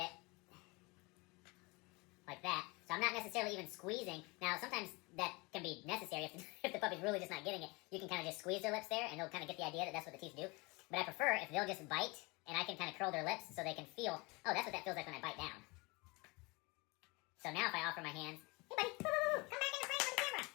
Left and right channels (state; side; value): quieter; right; 26.2 dB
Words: like that. So I'm not necessarily even squeezing. Now, sometimes that can be necessary if the puppy's really just not getting it. You can kind of just squeeze their lips there, and they'll kind of get the idea that that's what the teeth do. But I prefer if they'll just bite, and I can kind of curl their lips so they can feel, oh, that's what that feels like when I bite down. So now if I offer my hands, hey buddy, come back in the frame with the camera.